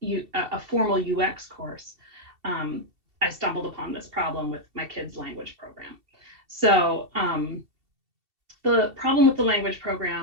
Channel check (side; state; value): left; late; 2.7 ms